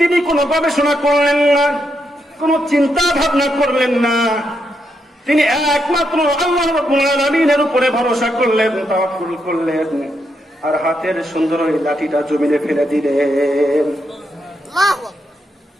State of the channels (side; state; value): both; normal; correlation 0.81